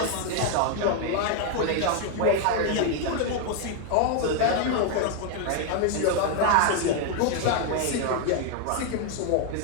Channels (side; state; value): both; different; correlation 0.00